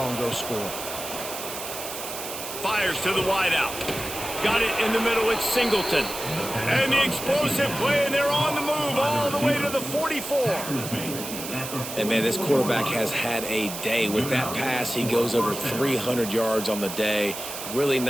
and go score. Fires to the wideout. Got it in the middle, it's Singleton. And the explosive play, and they're on the move all the way to the 44. And, man, this quarterback has had a day. With that pass, he goes over 300 yards on the day. Really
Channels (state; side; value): noise; right; hiss, 8 dB below the sound